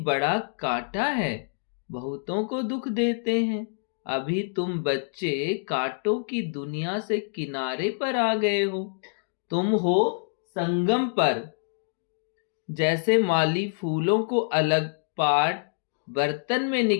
कांटा है, बहुतों को दुख देते हैं। अभी तुम बच्चे कांटों की दुनिया से किनारे पर आ गए हो। तुम हो संगम पर। जैसे माली फूलों को अलग पाट बर्तन में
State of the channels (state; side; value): silent; right; digital silence